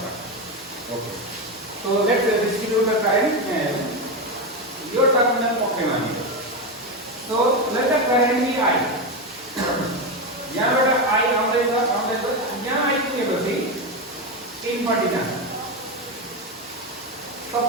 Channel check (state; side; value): normal; both; correlation 0.13